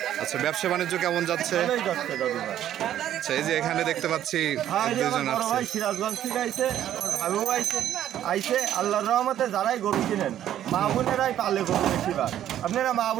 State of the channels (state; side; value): quieter; left; 11.4 dB